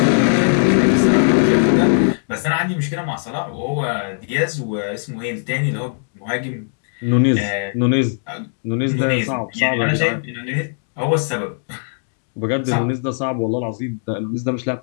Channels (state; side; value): silent; right; digital silence